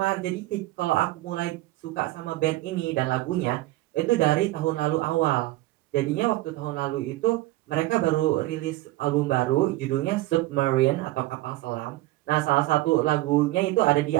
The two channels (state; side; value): quieter; left; 18.2 dB